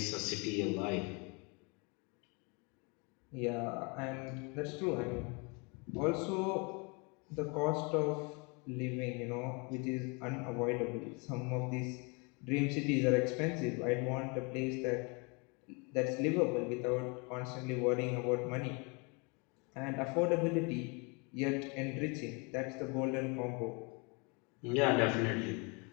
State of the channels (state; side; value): quieter; right; 31.3 dB